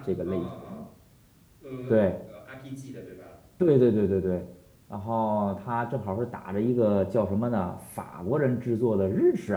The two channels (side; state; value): both; identical; correlation 1.00